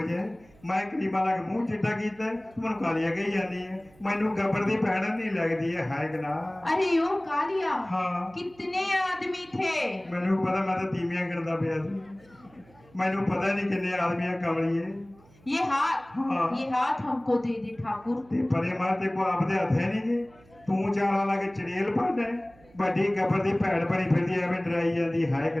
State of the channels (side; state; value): right; noise; hum, 27 dB below the sound